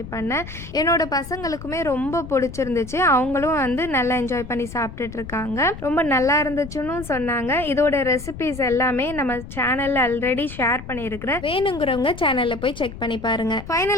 பண்ணேன். என்னோட பசங்களுக்குமே ரொம்ப பிடிச்சிருந்துச்சு. அவங்களும் வந்து நல்லா என்ஜாய் பண்ணி சாப்பிட்டுட்டு இருக்காங்க. ரொம்ப நல்லா இருந்துச்சுன்னு சொன்னாங்க. இதோட ரெசிபிஸ் எல்லாமே நம்ம சேனலில் ஆல்ரெடி ஷேர் பண்ணியிருக்கிறேன். வேணுங்கிறவங்க சேனலில் போய் செக் பண்ணி பாருங்க.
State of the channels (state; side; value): noise; left; rumble, 12 dB below the sound